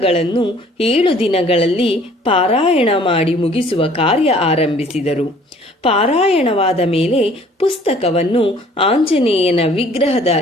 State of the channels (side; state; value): both; normal; correlation 0.55